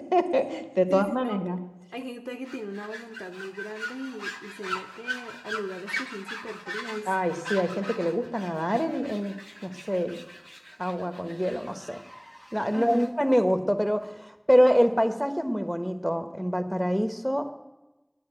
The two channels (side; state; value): both; identical; correlation 1.00